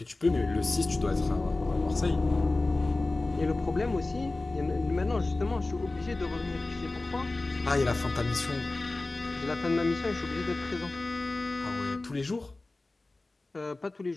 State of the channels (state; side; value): quieter; right; 3.1 dB